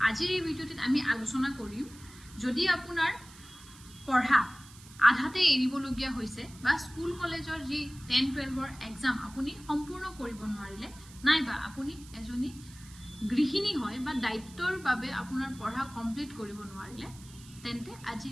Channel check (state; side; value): noise; right; hiss, 20 dB below the sound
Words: আজিৰ এই ভিডিঅ'টিত আমি আলোচনা কৰিম যদি আপোনাৰ পঢ়া আধাতে এৰিবলগীয়া হৈছে বা স্কুল কলেজৰ যি 10-12ৰ এক্সাম আপুনি সম্পূৰ্ণ কৰিব নোৱাৰিলে নাইবা আপুনি এজনী গৃহিণী হয় বা দায়িত্বৰ বাবে আপোনাৰ পঢ়া কমপ্লিট কৰিব নোৱাৰিলে তেন্তে